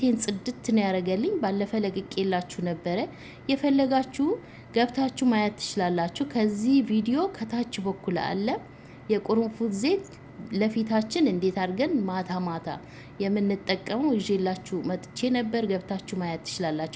ጽድት ነው ያደረገልኝ። ባለፈ ለቅቄላችሁ ነበረ። የፈለጋችሁ ገብታችሁ ማየት ትችላላችሁ። ከዚህ ቪዲዮ ከታች በኩል አለ የቁርንፉድ ዘይት ለፊታችን እንዴት አድርገን ማታ ማታ የምንጠቀመው ይዤላችሁ መጥቼ ነበር። ገብታችሁ ማየት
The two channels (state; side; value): identical; both; correlation 1.00